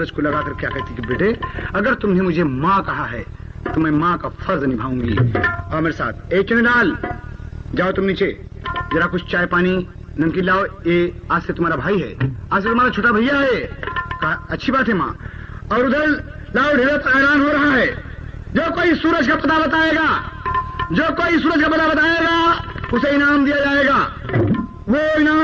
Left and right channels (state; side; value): identical; both; correlation 1.00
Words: को लगाकर क्या कहती कि बेटे, अगर तुमने मुझे माँ कहा है तो मैं माँ का फर्ज निभाऊंगी। और मेरे साथ ए चुनीलाल, जाओ तुम नीचे, जरा कुछ चाय पानी नमकीन लाओ। ये आज से तुम्हारा भाई है, आज से तुम्हारा छोटा भैया है। कहा अच्छी बात है माँ। और उधर लाओ, ढेर हैरान हो रहा है। जो कोई सूरज का पता बताएगा, जो कोई सूरज का पता बताएगा उसे इनाम दिया जाएगा, वो